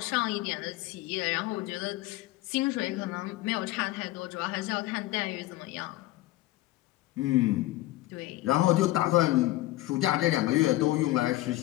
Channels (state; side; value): quieter; right; 17.1 dB